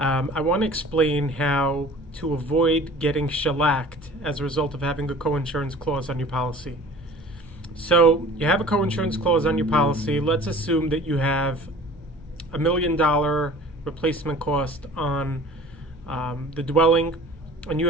want to explain how to avoid getting shellacked as a result of having a co-insurance clause on your policy. So you have a co-insurance clause on your policy. Let's assume that you have $1 million replacement cost on the dwelling, and you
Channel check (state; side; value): noise; left; hum, 22 dB below the sound